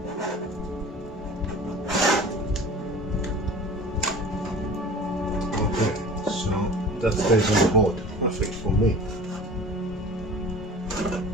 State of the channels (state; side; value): normal; both; correlation 0.41